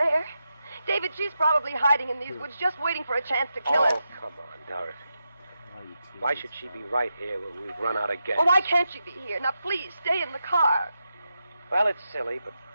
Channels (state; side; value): inverted; both; correlation -0.88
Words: David, she's probably hiding in these woods just waiting for a chance to kill us. Oh, come on, Dorothy. Why should she be right here when we've run out of gas? Oh, why can't she be here? Now, please, stay in the car. Well, it's silly, but